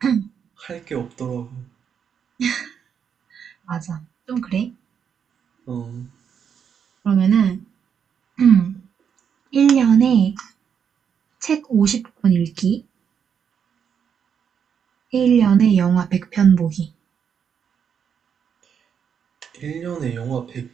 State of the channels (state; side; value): quieter; left; 7.5 dB